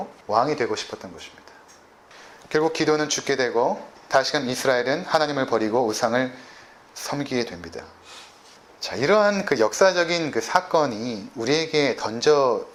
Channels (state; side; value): identical; both; correlation 1.00